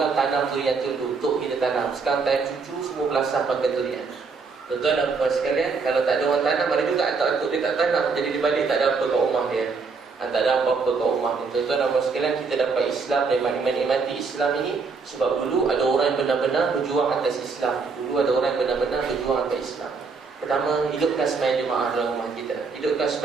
tanam durian tu dulu untuk kita tanam. Sekarang time cucu semua belasah pakai durian. Tuan-tuan dan puan sekalian, kalau tak ada orang tanam, ada juga atuk-atuk dia tak tanam, jadi di balik tak ada apa kat rumah dia. Tak ada apa-apa kat rumah dia. Tuan-tuan dan puan sekalian, kita dapat Islam dan menikmati Islam ini sebab dulu ada orang yang benar-benar berjuang atas Islam. Dulu ada orang yang benar-benar berjuang atas Islam. Pertama, hidupkan sembahyang jemaah dalam rumah kita. Hidupkan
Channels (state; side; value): quieter; left; 4.7 dB